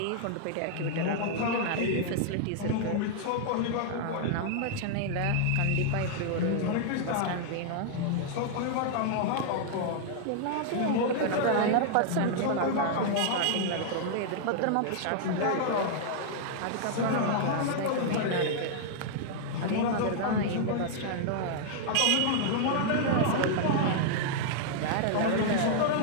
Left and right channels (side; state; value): both; different; correlation -0.01